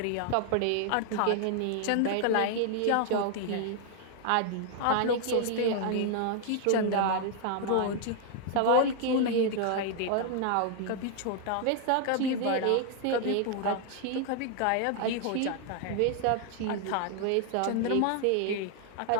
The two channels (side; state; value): both; different; correlation 0.00